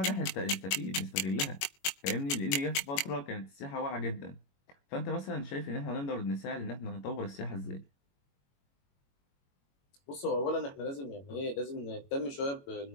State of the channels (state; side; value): late; right; 22 ms